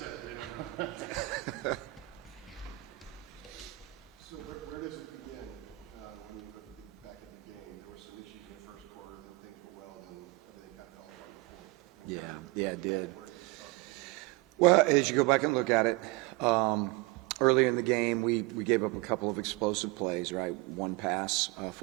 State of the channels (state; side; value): quieter; left; 22.5 dB